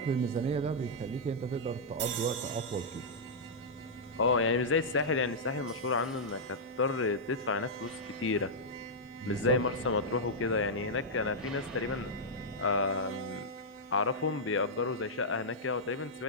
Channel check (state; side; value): normal; both; correlation -0.08